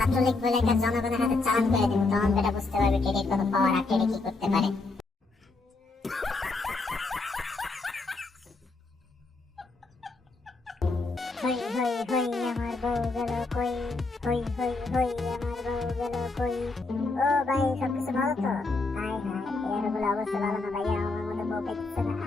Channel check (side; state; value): right; quieter; 3.5 dB